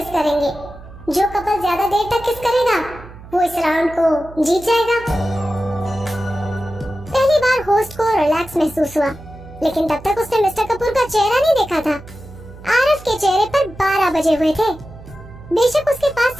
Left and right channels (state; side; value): noise; right; hum, 17 dB below the sound